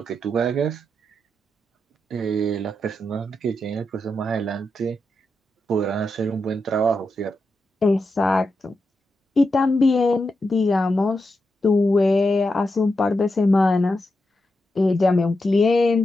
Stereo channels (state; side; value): normal; both; correlation 0.87